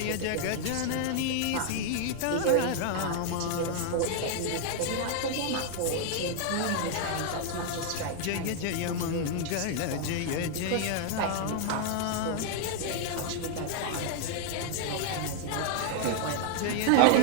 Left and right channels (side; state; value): both; different; correlation 0.00